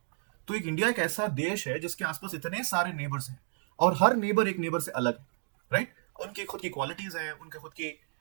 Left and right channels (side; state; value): left; silent; 57 dB below the other